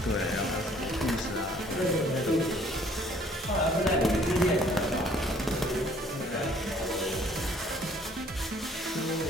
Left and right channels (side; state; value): both; normal; correlation 0.59